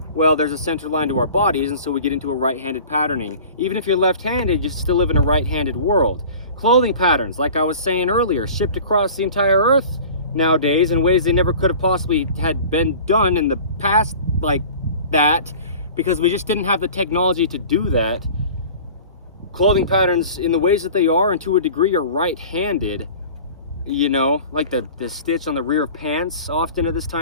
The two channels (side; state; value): both; inverted; correlation -0.41